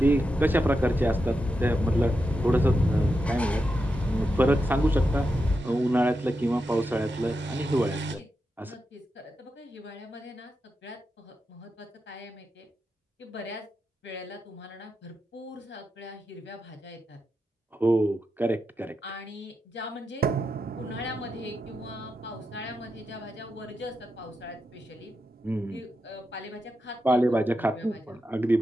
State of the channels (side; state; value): both; normal; correlation 0.87